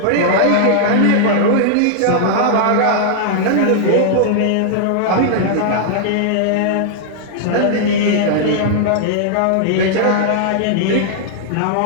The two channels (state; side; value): different; both; correlation -0.01